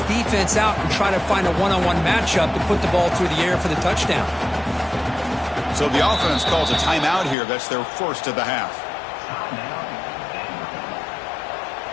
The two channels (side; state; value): right; drops out; at 7.4 s